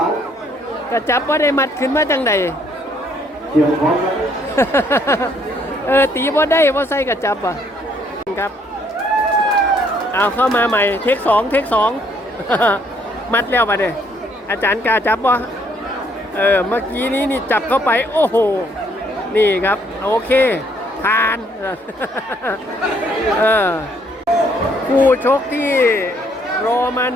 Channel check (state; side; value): normal; both; correlation 0.67